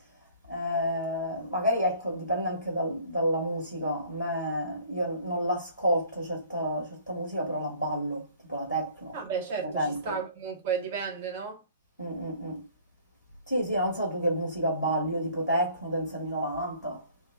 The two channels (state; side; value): inverted; both; correlation -0.53